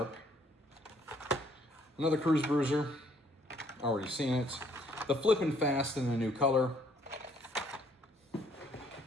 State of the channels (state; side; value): normal; both; correlation 0.64